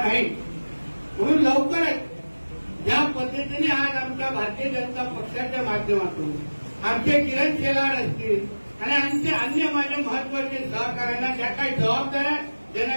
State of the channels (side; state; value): both; inverted; correlation -1.00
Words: नाही. म्हणून लवकरच या पद्धतीने आज आमच्या भारतीय जनता पक्षाच्या माध्यमातून आमचे किरण शेलार असतील आणि आमचे अन्य माझ्या महत्वाचे सहकार्यांना ज्या काही जबाबदाऱ्या